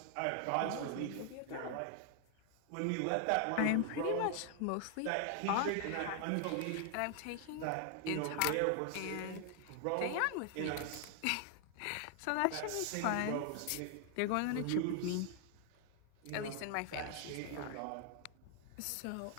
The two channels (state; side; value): different; both; correlation 0.00